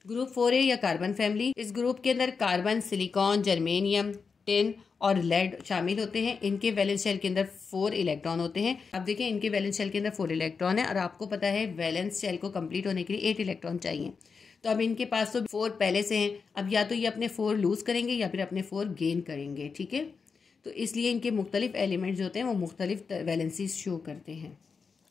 ग्रुप 4A या कार्बन फैमिली। इस ग्रुप के अंदर कार्बन, सिलिकॉन, जर्मेनियम, टिन और लेड शामिल होते हैं। इनके वैलेंस शेल के अंदर 4 इलेक्ट्रॉन होते हैं। अब देखिए इनके वैलेंस शेल के अंदर 4 इलेक्ट्रॉन है और आपको पता है वैलेंस शेल को कंप्लीट होने के लिए 8 इलेक्ट्रॉन चाहिए। तो अब इनके पास तो 4 पहले से हैं, अब या तो ये अपने 4 लूज करेंगे या फिर अपने 4 गेन करेंगे, ठीक है। तो इसलिए इनके मुख्तलिफ एलिमेंट्स जो होते हैं वो मुख्तलिफ वैलेंसीज शो करते हैं।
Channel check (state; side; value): quieter; right; 5.3 dB